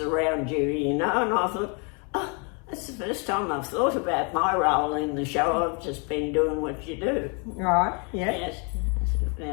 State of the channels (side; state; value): right; quieter; 35.3 dB